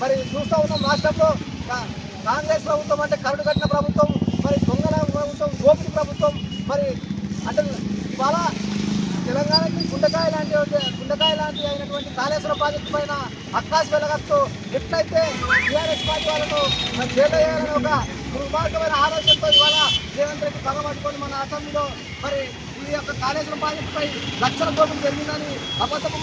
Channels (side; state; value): both; identical; correlation 1.00